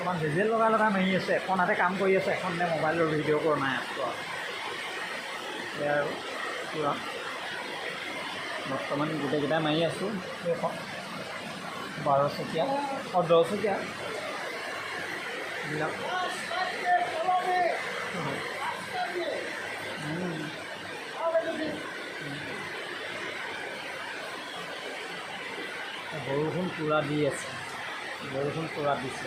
ডিজেল লগাই লগাই মাৰি আছোঁ। এখন হাতে কাম কৰি আছে, এখনে মোবাইলৰ ভিডিঅ' কৰা নাই আছোঁ আৰু। এয়া আৰু পূৰা বৰ্তমান গোটেইকেইটা মাৰি আছোঁ। এইখন 12 চকীয়া আৰু 10 চকীয়া এইবিলাক। বৰষুণ পূৰা দি আছে, বৰষুণ পূৰা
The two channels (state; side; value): identical; both; correlation 1.00